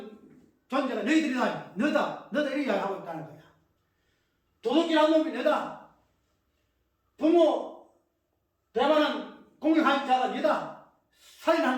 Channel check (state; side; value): identical; both; correlation 1.00